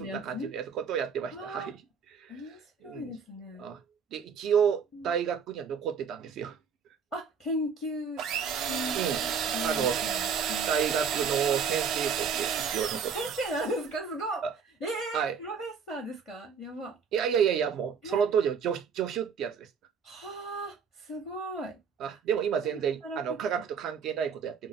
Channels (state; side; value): quieter; left; 6.4 dB